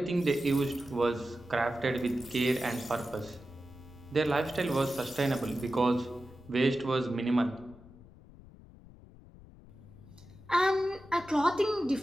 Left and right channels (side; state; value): left; noise; rumble, 21 dB below the sound